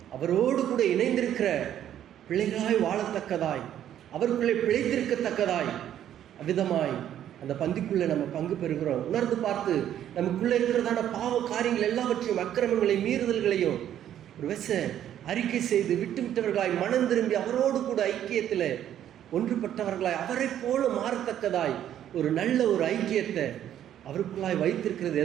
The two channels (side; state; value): left; quieter; 10.8 dB